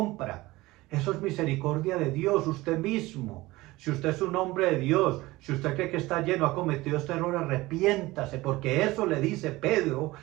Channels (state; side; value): quieter; left; 19.6 dB